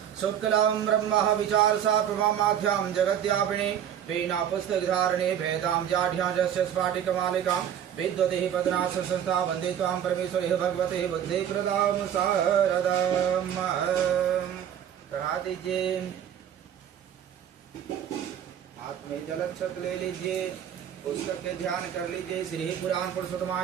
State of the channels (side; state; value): left; quieter; 9.6 dB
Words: शुक्लं ब्रह्म विचारसा प्रमामाध्यां जगद्व्यापिनी वीणा पुस्तकधारिणी भेदां जाढ्यां रस्य स्फाटिकमालिकां विद्वतिः पदनाश संस्था वन्दे त्वां परमेश्वरी भगवते बुद्धिप्रदां शारदाम्। चढ़ा दीजिए। हाथ में जलक्षत ले लीजिए। पुस्तक के ध्यान कर लीजिए। श्री पुराण